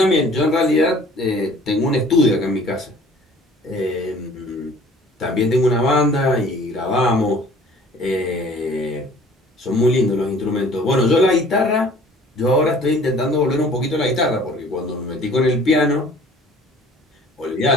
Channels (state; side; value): normal; both; correlation 0.51